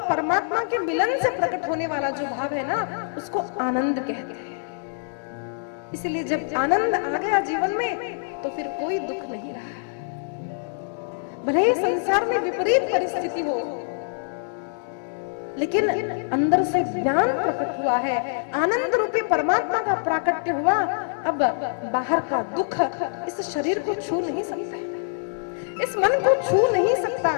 परमात्मा के मिलन से प्रकट होने वाला जो भाव है ना, उसको आनंद कहते हैं। इसलिए जब आनंद आ गया जीवन में तो फिर कोई दुख नहीं रहा। भले ही संसार में विपरीत परिस्थिति हो, लेकिन अंदर से ज्ञान प्रकट हुआ है, आनंद रूपी परमात्मा का प्राकट्य हुआ। अब बाहर का दुख इस शरीर को छू नहीं सकता, इस मन को छू नहीं सकता।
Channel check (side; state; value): right; silent; digital silence